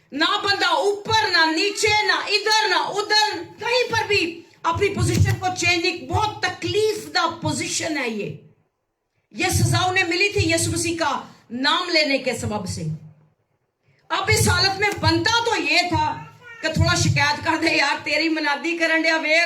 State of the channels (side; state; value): both; identical; correlation 1.00